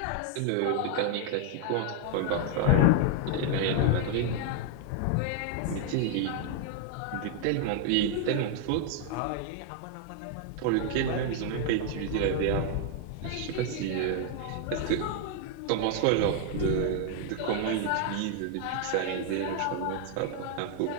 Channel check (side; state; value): both; different; correlation 0.00